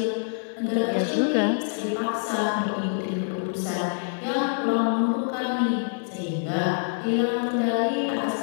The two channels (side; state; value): right; silent; digital silence